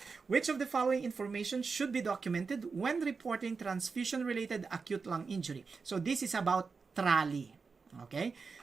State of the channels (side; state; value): left; quieter; 4.8 dB